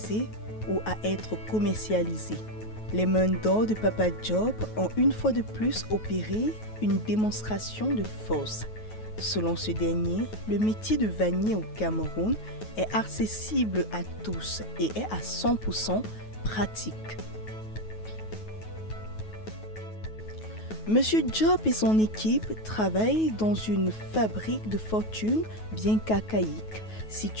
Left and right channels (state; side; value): late; right; 9.3 ms